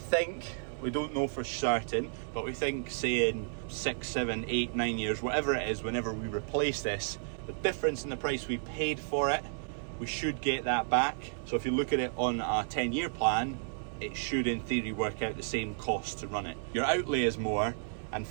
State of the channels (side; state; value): left; silent; 56 dB below the other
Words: we don't know for certain, but we think, say in 6, 7, 8, 9 years, whatever it is, whenever we replace this, the difference in the price we paid for it, we should get that back. So if you look at it on a 10-year plan, it should in theory work out the same cost to run it. Your outlay is more, and